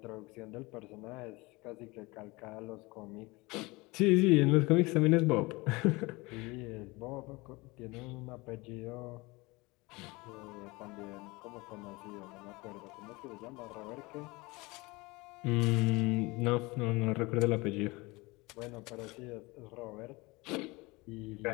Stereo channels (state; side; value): quieter; right; 23.7 dB